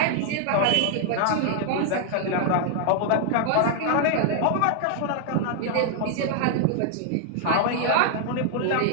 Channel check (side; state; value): both; different; correlation 0.00